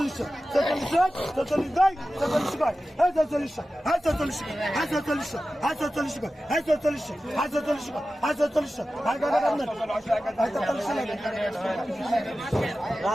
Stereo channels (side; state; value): both; normal; correlation 0.94